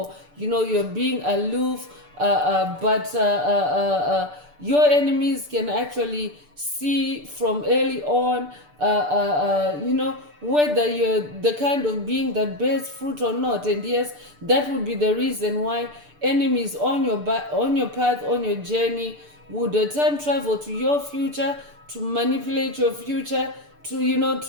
you're being aloof, but your enemies can actually see from early on whether you're the kind of being that bears fruit or not. And yes, that would be the reason why enemies on your path, on your journey, would time travel to your future to manipulate your future, to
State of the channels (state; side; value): late; left; 6.8 ms